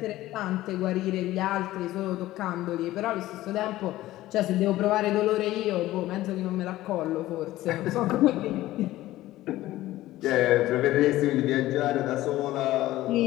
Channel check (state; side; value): quieter; right; 15.9 dB